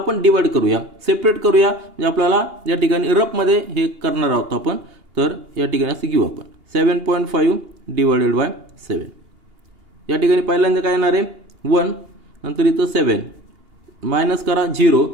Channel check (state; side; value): late; left; 2.8 ms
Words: डिवाइड करूया, सेपरेट करूया, म्हणजे आपल्याला या ठिकाणी रफ मध्ये हे करणार आहोत आपण. तर या ठिकाणी असं घेऊ आपण 7.5 डिवाइडेड बाय 7. या ठिकाणी पहिल्यांदा काय येणार आहे 1, नंतर इथं 7 मायनस करा 0.